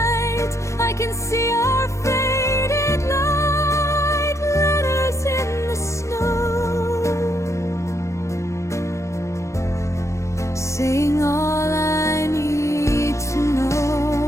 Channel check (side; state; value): right; late; 0.14 ms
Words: I can see our faded light. Letters in the snow, saying all I need to know.